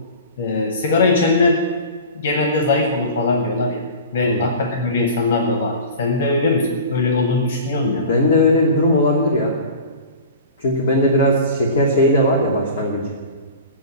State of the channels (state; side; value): inverted; both; correlation -0.38